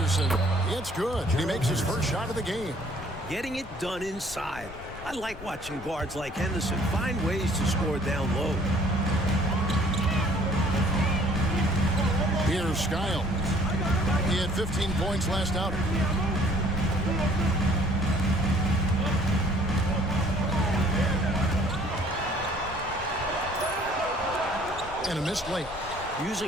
It's good. He makes his first shot of the game. Getting it done inside. I like watching guards like Henderson find ways to score down low. Here's Skiles. He had 15 points last outing. And a missed layup.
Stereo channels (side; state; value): left; noise; rumble, 16 dB below the sound